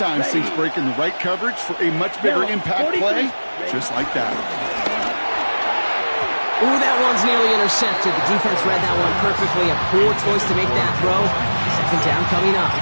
Saints break in the right coverage for a much bigger impact play, just like that. Ooh, that one's nearly intercepted. The defense read that one perfectly. A poor choice to make that throw. Second down coming up.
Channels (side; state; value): both; inverted; correlation -1.00